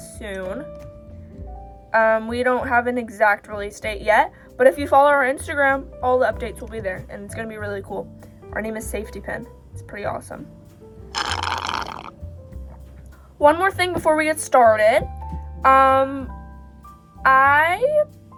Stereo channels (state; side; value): identical; both; correlation 1.00